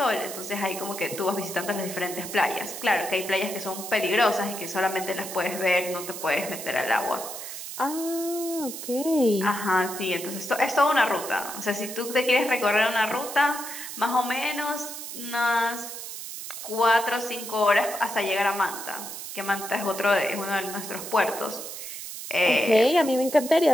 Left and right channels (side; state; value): right; noise; hiss, 9 dB below the sound